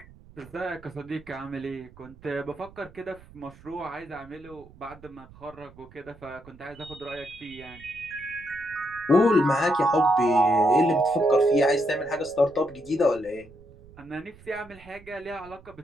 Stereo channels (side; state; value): right; noise; rumble, 22 dB below the sound